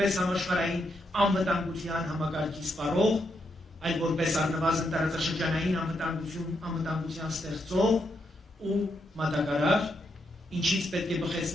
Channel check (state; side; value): normal; both; correlation 0.80